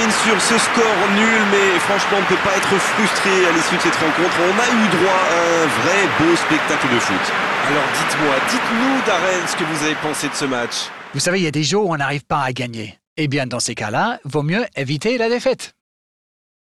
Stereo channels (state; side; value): identical; both; correlation 1.00